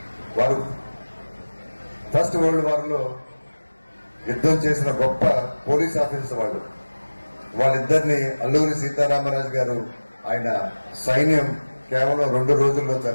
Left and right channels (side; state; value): both; inverted; correlation -1.00